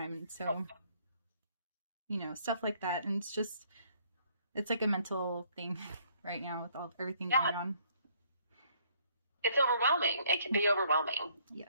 And so, stuff like that. And it's just, It's like a mental thing right now with everything Yeah. going on. It's overwhelming. It can be overwhelming.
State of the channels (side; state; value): both; inverted; correlation -0.64